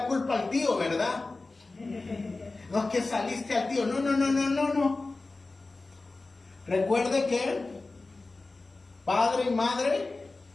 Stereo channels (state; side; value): quieter; right; 3.4 dB